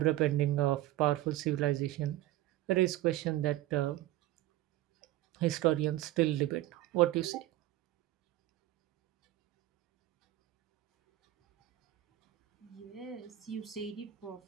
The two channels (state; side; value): quieter; left; 15.0 dB